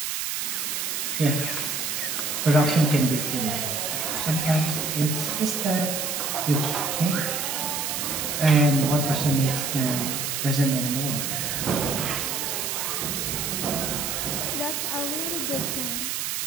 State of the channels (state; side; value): noise; right; hiss, 1 dB below the sound